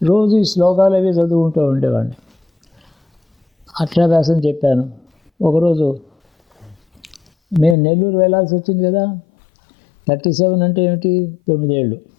రోజు ఈ శ్లోకాలు అవి చదువుకుంటూ ఉండేవాడిని. అక్షరాభ్యాసం చెప్పాను. ఒకరోజు మేము నెల్లూరు వెళ్ళాల్సి వచ్చింది కదా. 37 అంటే ఏమిటి? 9 ఏళ్ళు,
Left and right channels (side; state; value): right; drops out; at 7.8 s